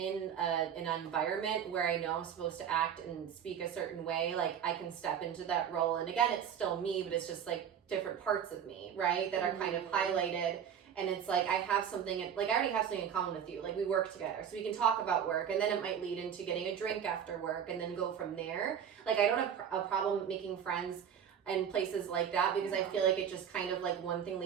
environment where I know I'm supposed to act and speak a certain way, like I can step into that role. And again, it's still me, but it's just like different parts of me, right? That are kind of highlighted. And it's like I have something, like I already have something in common with you. Like we work together, so we can talk about work, and then it might lead into getting a drink after work, and then go from there. Like I don't have a problem making friends in places like that, because I feel like it just kind of like one thing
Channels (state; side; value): quieter; left; 8.5 dB